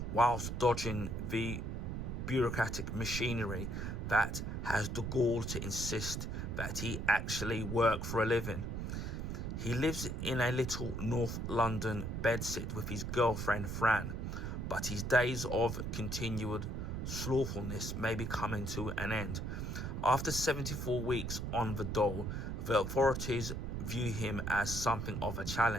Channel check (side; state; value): right; noise; rumble, 3 dB below the sound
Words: whilst dodging the bureaucratic machinery that has the gall to insist that he actually work for a living. He lives in a little North London bedsit with his girlfriend Fran, but his days of continued slothfulness may be coming to an end. After 74 weeks on the dole, the authorities view him as something of a